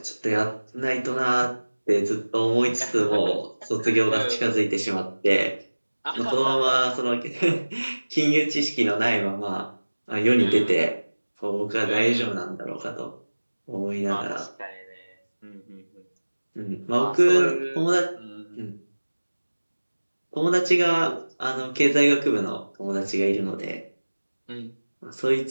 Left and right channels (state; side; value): inverted; both; correlation -1.00